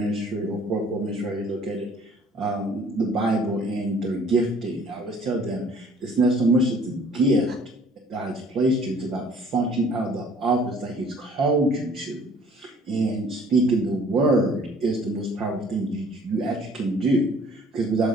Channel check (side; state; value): both; normal; correlation 0.55